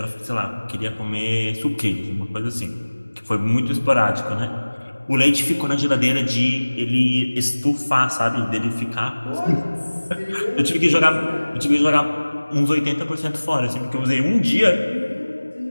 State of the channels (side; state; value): both; inverted; correlation -1.00